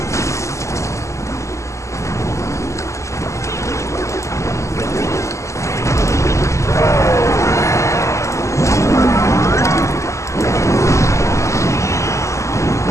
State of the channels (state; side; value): late; right; 0.14 ms